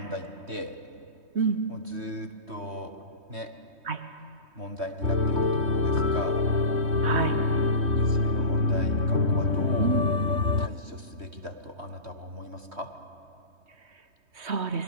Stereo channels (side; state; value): left; late; 3.2 ms